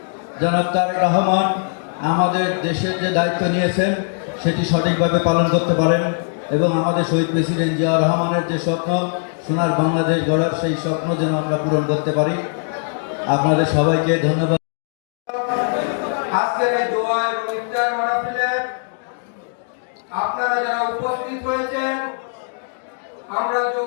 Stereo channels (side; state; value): right; silent; digital silence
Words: জনাব তারেক রহমান আমাদের দেশের যে দায়িত্ব নিয়েছেন সেটি সঠিকভাবে পালন করতে পারেন এবং আমাদের শহীদ প্রেসিডেন্ট জিয়া রহমানের যে স্বপ্ন সোনার বাংলাদেশ গড়ার সেই স্বপ্ন যেন আমরা পূরণ করতে পারি। আপনাদের সবাইকে ধন্যবাদ। আজকের এই দোয়া এবং ইফতার মাহফিলে আপনারা যারা উপস্থিত হয়েছেন, আমরা